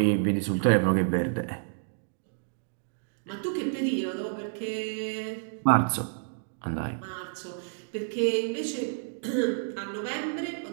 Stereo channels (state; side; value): silent; left; digital silence